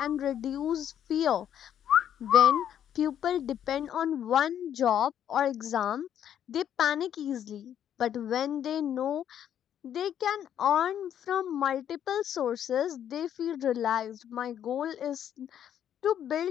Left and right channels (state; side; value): quieter; right; 9.8 dB